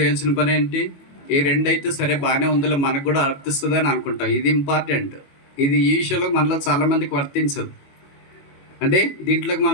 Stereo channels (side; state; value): right; late; 22 ms